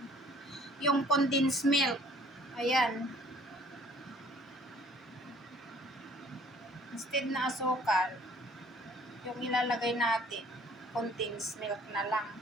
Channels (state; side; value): normal; both; correlation 0.56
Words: yung condensed milk. Ayan. Instead na asukal, yung ilalagay natin, condensed milk na lang.